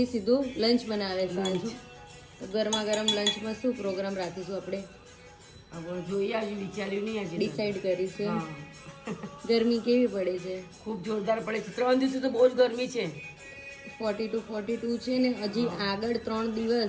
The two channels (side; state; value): both; identical; correlation 1.00